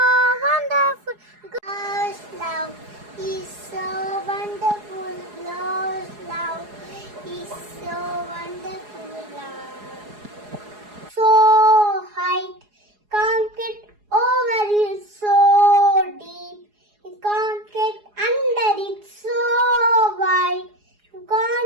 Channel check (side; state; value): left; late; 4.8 ms